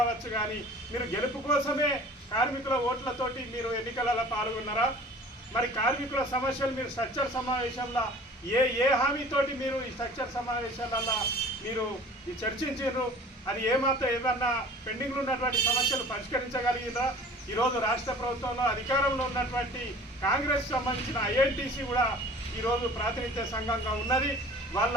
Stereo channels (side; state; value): both; normal; correlation 0.46